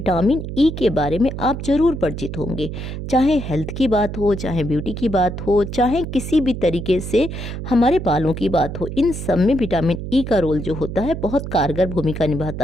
ई के बारे में आप ज़रूर परिचित होंगे। चाहे हेल्थ की बात हो, चाहे ब्यूटी की बात हो, चाहे किसी भी तरीके से हमारे बालों की बात हो, इन सब में विटामिन ई का रोल जो होता है बहुत कारगर भूमिका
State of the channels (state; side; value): noise; right; hum, 7 dB below the sound